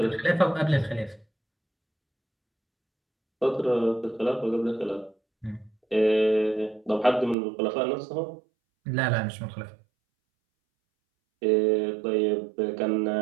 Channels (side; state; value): left; drops out; at 7.4 s